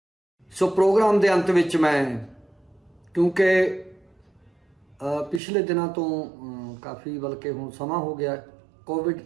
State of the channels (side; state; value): left; drops out; at 5.4 s